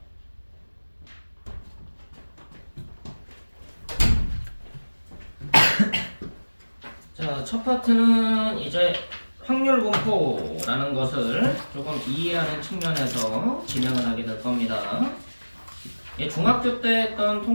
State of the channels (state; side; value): inverted; both; correlation -1.00